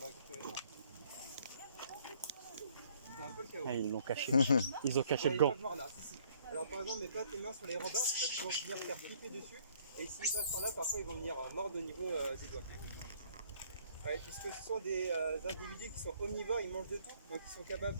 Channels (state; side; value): inverted; both; correlation -0.62